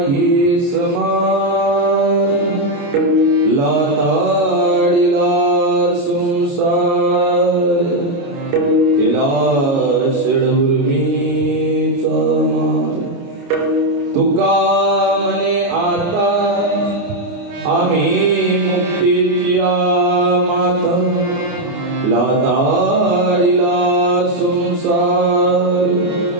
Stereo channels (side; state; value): left; late; 30 ms